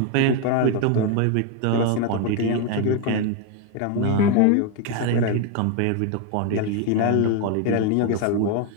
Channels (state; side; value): different; both; correlation 0.01